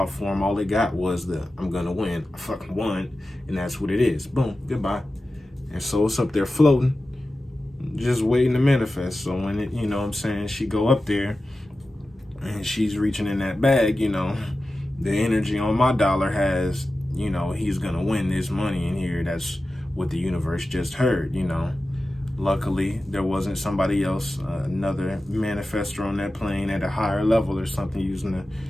form, all it got was the I'm gonna win. I fucking won, and that's what it is. Boom, goodbye. And so it's up there floating, just waiting to manifest. So when it, she go up there and she's reaching in that bag, the energy on my dollar has, he's gonna win this money in here. That's what the universe just heard, Luckily, there wasn't somebody else, another manifestor on that plane at a higher level or something using a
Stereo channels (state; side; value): normal; both; correlation 0.94